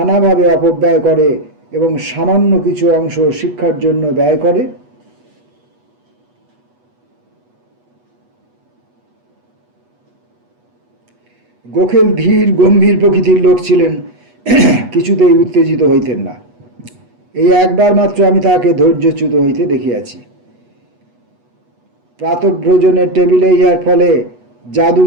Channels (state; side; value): late; left; 8.2 ms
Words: অপব্যয় করে এবং সামান্য কিছু অংশ শিক্ষার জন্য ব্যয় করে? গোখেল ধীর গম্ভীর প্রকৃতির লোক ছিলেন, কিছুতেই উত্তেজিত হইতেন না। এই একবার মাত্র আমি তাহাকে ধৈর্যচ্যুত হইতে দেখিয়াছি। প্রাতঃভোজনের টেবিলে ইহার ফলে